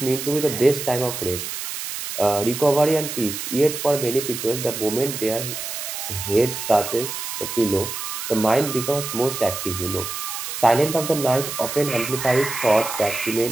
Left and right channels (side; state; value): right; noise; hiss, 6 dB below the sound